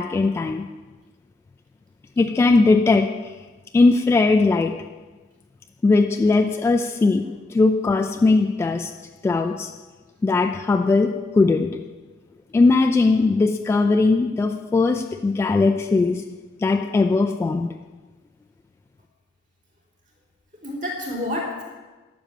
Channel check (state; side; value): quieter; right; 3.1 dB